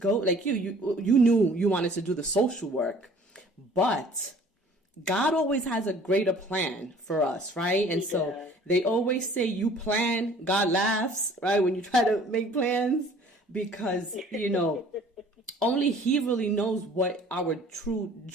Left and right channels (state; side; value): normal; both; correlation 0.52